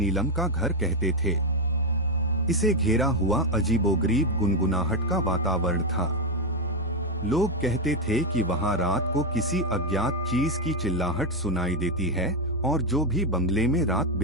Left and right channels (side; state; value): both; normal; correlation 0.06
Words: का घर कहते थे। इसे घेरा हुआ अजीबोगरीब गुनगुनाहट का वातावरण था। लोग कहते थे कि वहां रात को किसी अज्ञात चीज की चिल्लाहट सुनाई देती है और जो भी बंगले में रात